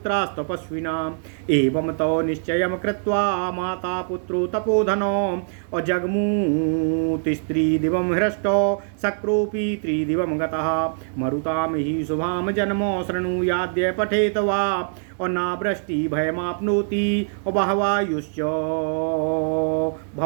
एवं तो निश्चयं कृत्वा माता पुत्रो तपोधनो अजग्मूतिस्त्रिदिवं हृष्टो शक्रोऽपि त्रिदिवं गतः मरुतां हि शुभां जन्मो शृणुयाद्य पठेत वा और नावृष्टि भयमाप्नोति और बहवायुश्च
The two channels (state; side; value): silent; left; digital silence